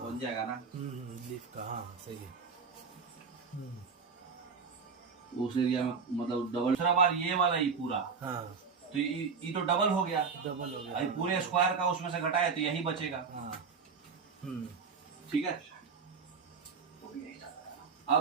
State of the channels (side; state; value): left; quieter; 5.5 dB